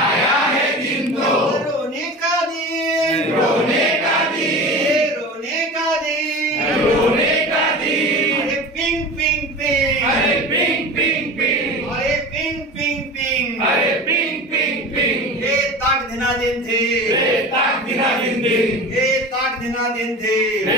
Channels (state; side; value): normal; both; correlation 0.33